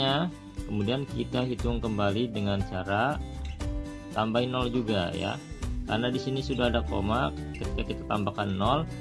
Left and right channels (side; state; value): both; identical; correlation 1.00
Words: kemudian kita hitung kembali dengan cara tambahin 0 juga ya. Karena di sini sudah ada koma, ketika kita tambahkan 0